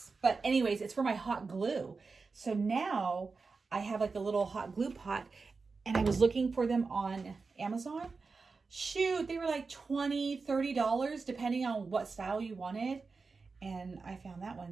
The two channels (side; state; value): left; quieter; 4.4 dB